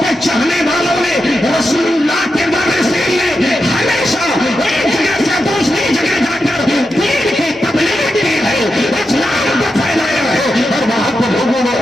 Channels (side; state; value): both; normal; correlation 0.88